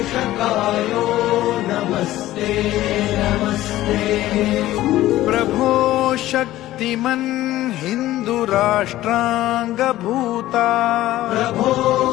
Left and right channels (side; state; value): right; quieter; 15.2 dB